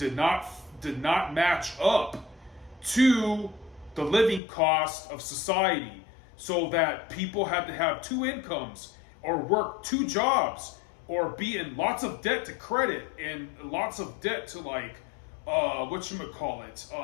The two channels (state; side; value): drops out; right; at 4.4 s